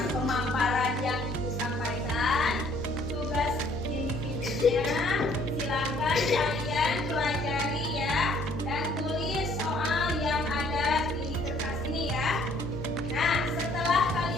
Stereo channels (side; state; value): left; noise; hum, 9 dB below the sound